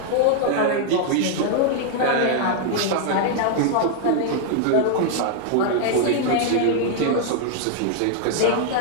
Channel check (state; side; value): different; both; correlation 0.00